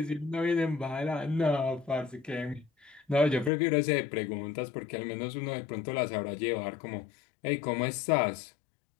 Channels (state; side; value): drops out; right; at 3.5 s